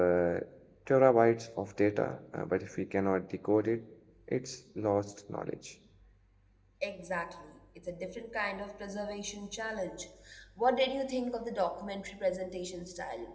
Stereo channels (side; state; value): both; identical; correlation 1.00